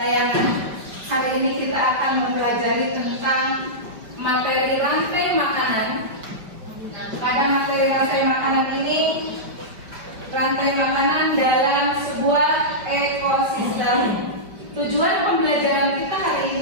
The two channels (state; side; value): late; left; 4.8 ms